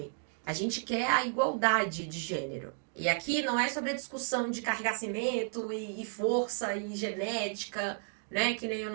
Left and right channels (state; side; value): silent; left; 56 dB below the other